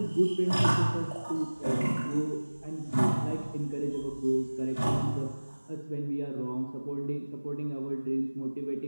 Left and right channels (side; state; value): both; inverted; correlation -1.00